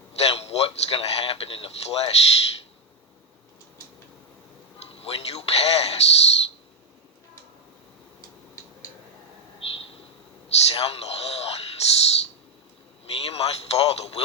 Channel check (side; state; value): both; normal; correlation 0.04